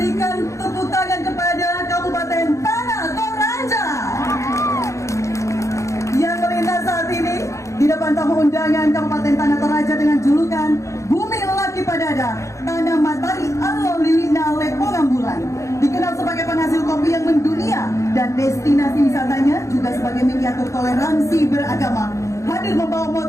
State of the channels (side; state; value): right; late; 0.15 ms